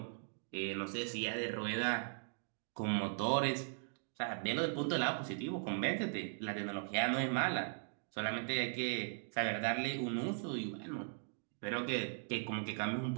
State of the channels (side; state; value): left; silent; digital silence